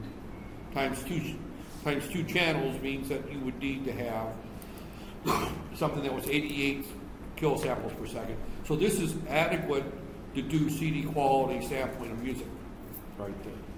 Times two channels means that you would need to have something that was 88 kilosamples per second. So this is adequate to do CD quality sampling of music right there.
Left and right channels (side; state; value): both; identical; correlation 1.00